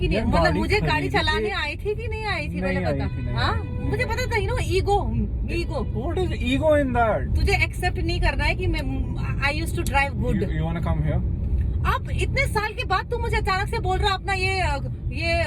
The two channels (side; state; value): both; identical; correlation 1.00